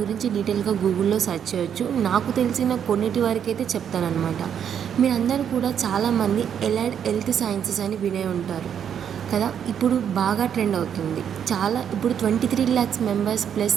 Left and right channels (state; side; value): quieter; left; 8.5 dB